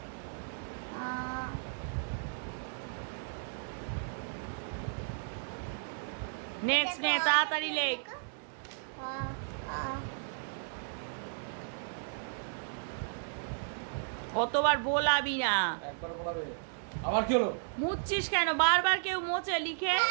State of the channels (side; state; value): left; silent; digital silence